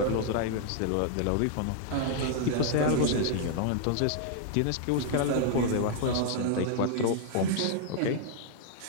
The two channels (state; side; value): different; both; correlation 0.00